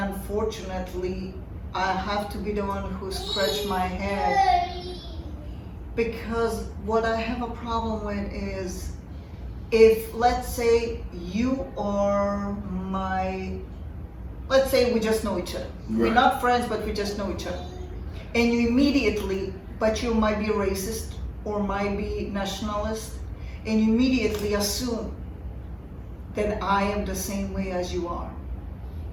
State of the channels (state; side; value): identical; both; correlation 1.00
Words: I have to be the one who scratched my head, because what I have a problem with is, if let's say you are let's say we just know each other. Right. We're not friends, but we just know each other. And you immediately, but you might be racist or might be nationalist, and you immediately assume that I am the same way as you are.